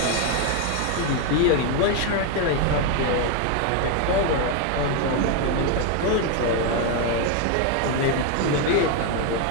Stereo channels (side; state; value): both; different; correlation 0.01